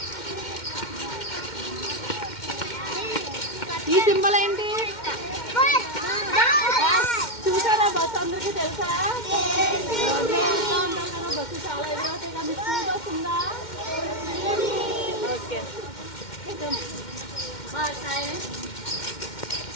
ఈ సింబల్ ఏంటి చూసారా? బస్సు అందరికీ తెలుసా? రోడ్ మీద వెళ్తూ ఉంటాం కదా, బస్సు చాలా ఎదురవుతాయి కదా. మీ స్కూల్ బస్ ఉందా? ఓకే.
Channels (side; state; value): right; late; 2.1 ms